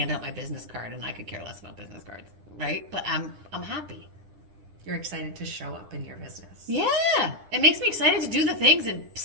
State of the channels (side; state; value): left; late; 10 ms